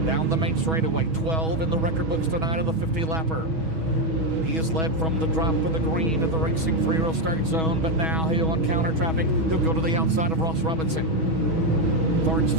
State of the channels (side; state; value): left; late; 6.2 ms